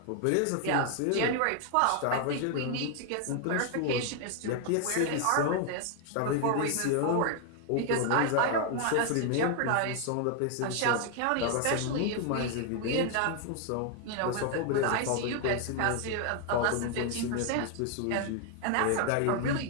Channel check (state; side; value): different; both; correlation 0.00